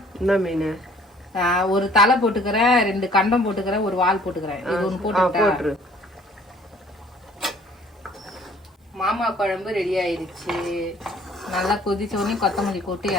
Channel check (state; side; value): normal; both; correlation 0.56